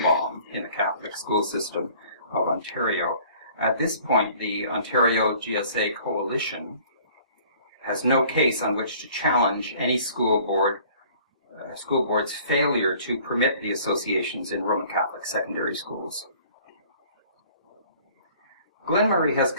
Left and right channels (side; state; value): both; inverted; correlation -0.53